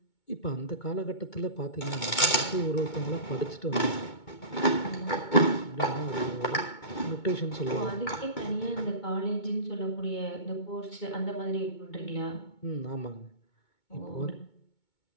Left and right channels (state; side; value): late; right; 2.2 ms